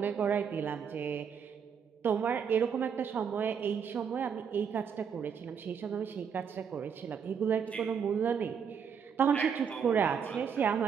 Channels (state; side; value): quieter; left; 7.0 dB